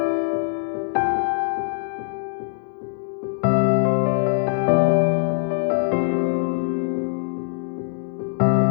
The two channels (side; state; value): right; silent; digital silence